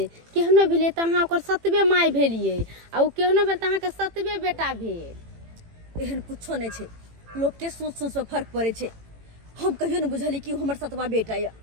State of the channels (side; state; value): left; late; 18 ms